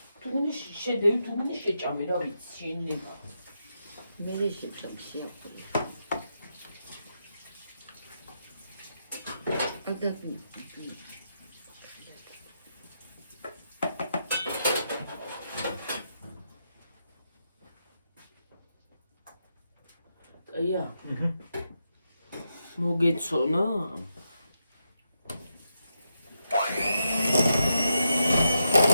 თუ გინდა შედევი თუ გინდა შეჭამე რა ვიცი შენება. მე შეჭამ შეაფრე. ადა აია. მოგეცონა?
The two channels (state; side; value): inverted; both; correlation -0.84